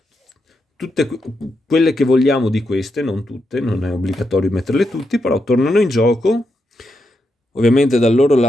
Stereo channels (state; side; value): normal; both; correlation 0.84